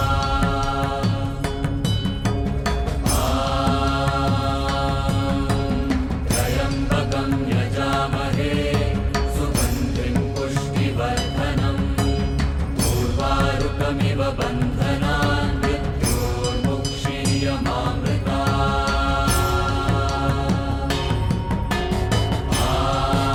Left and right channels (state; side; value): identical; both; correlation 1.00